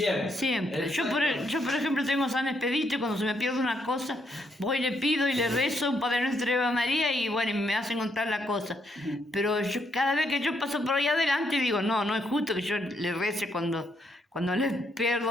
Siempre. Yo por ejemplo, tengo San Expedito y cuando se me pierde una cosa, voy, le pido y le rezo un Padre Nuestro y Ave María y bueno, y me hacen encontrar la cosa. Pero cada vez que yo paso por ahí adelante digo, no es justo que yo le rece cuando le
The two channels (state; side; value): normal; both; correlation 0.75